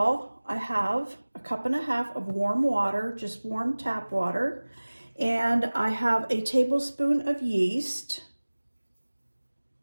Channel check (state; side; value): inverted; both; correlation -1.00